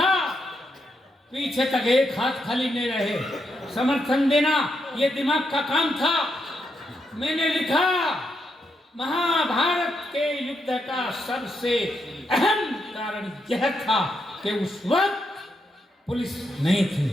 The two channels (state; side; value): normal; both; correlation 0.81